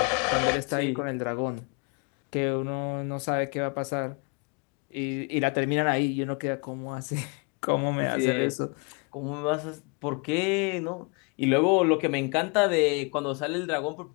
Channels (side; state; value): right; quieter; 33.5 dB